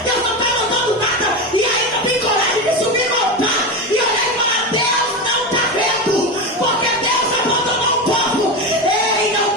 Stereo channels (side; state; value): both; normal; correlation 0.18